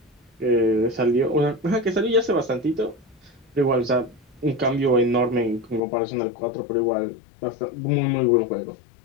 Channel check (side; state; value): right; drops out; at 5.8 s